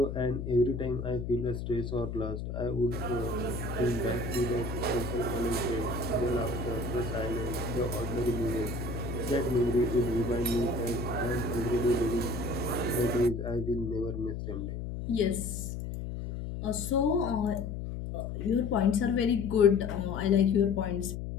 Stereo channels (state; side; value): noise; left; hum, 6 dB below the sound